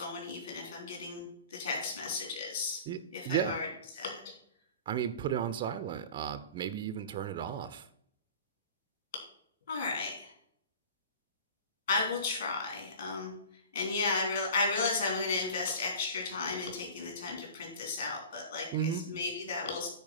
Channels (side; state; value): both; inverted; correlation -0.38